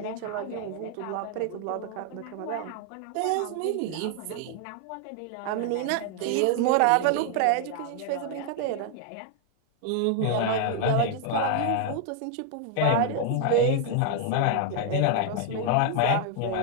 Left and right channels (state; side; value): different; both; correlation 0.00